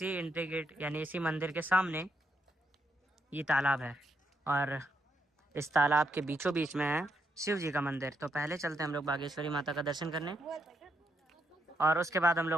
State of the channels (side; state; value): both; normal; correlation 0.78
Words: एंट्री गेट यानी इसी मंदिर के सामने ये तालाब है। और इस तालाब के बीचों बीच में है शिव जी का मंदिर। तो पहले चलते हैं हम लोग बागेश्वरी माता का दर्शन करने, और उसके बाद हम